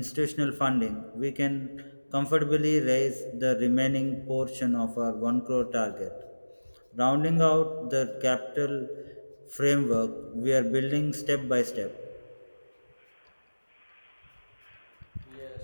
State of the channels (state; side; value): inverted; both; correlation -1.00